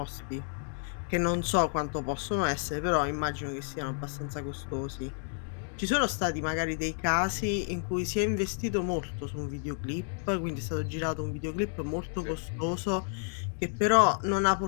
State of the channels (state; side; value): silent; right; 57 dB below the other